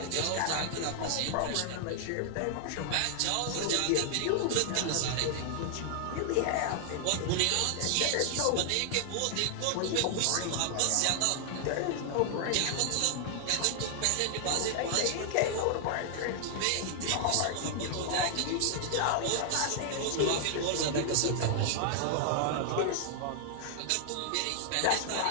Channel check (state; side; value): different; both; correlation 0.00